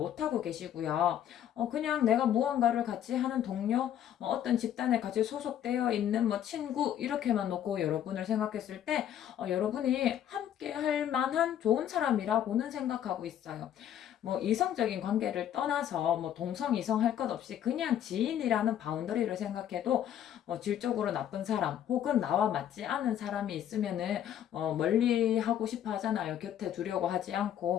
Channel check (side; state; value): right; quieter; 10.4 dB